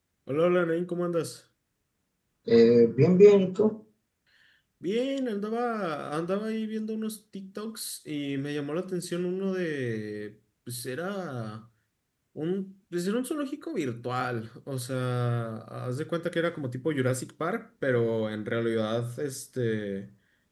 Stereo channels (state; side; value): identical; both; correlation 1.00